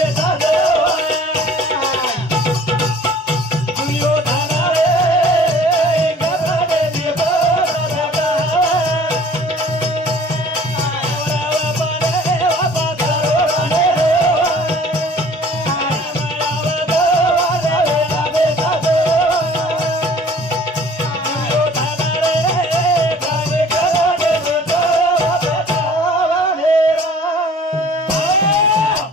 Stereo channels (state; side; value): normal; both; correlation 0.50